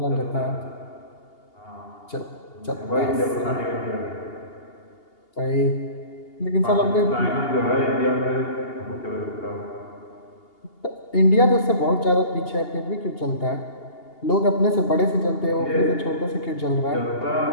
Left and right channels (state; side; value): late; right; 2.8 ms